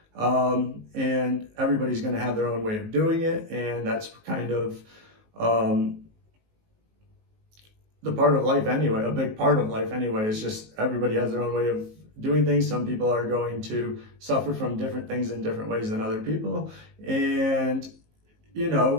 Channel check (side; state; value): left; late; 19 ms